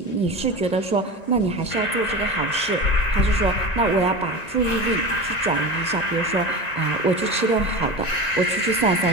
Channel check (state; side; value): late; right; 1.9 ms